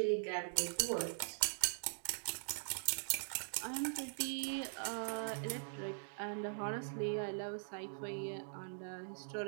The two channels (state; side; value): silent; left; digital silence